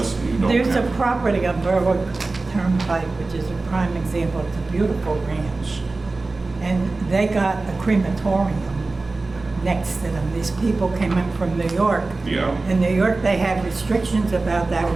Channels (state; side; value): quieter; left; 3.4 dB